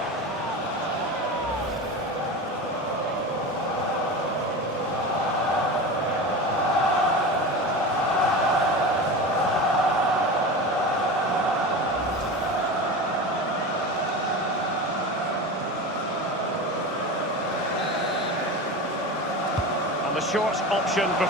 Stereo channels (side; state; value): both; normal; correlation 0.28